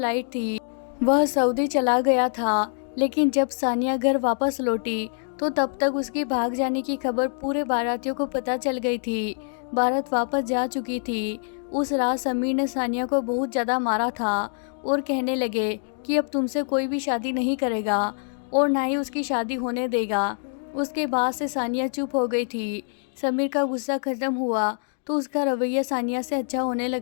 थी, वह सऊदी चला गया था। लेकिन जब सानिया घर वापस लौटी तो तब तक उसकी भाग जाने की खबर पूरे बारातियों को पता चल गई थी। बारात वापस जा चुकी थी। उस रात समीर ने सानिया को बहुत ज़्यादा मारा था और कहने लगे कि अब तुमसे कोई भी शादी नहीं करेगा और ना ही उसकी शादी होने देगा। उसके बाद से सानिया चुप हो गई थी। समीर का गुस्सा खत्म हुआ तो उसका रवैया सानिया से अच्छा होने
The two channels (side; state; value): right; silent; digital silence